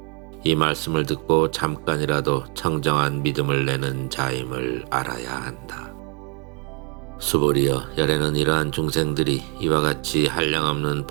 이 말씀을 듣고 잠깐이라도 청정한 믿음을 내는 자임을 알아야 한다. 수보리여, 열애는 이러한 중생들이 이와 같이 한량없는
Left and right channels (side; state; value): left; quieter; 26.2 dB